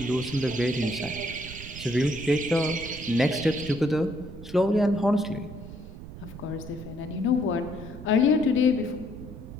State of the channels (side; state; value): right; noise; rumble, 13 dB below the sound